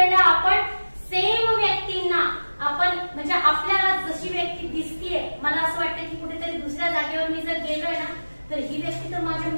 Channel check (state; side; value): inverted; both; correlation -1.00